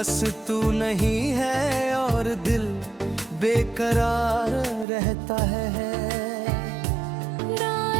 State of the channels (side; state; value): left; drops out; at 4.9 s